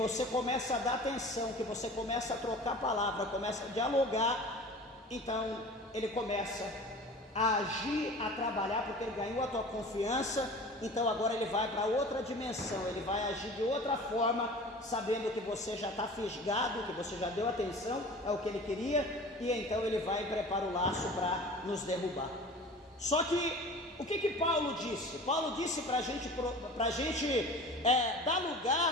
começa a dar atenção, que você começa a trocar palavra, começa a dialogar, então ele começa a agir, a trabalhar, porque ele ganhou a tua confiança. Então agora ele vai para outra dimensão, ele vai agir de outra forma, sabendo que você já está fisgado, que você já deu atenção ao que ele queria, e então ele vai e prepara o laço para nos derrubar. Só que o que Paulo disse? Paulo disse para a gente dar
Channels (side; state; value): both; normal; correlation 0.39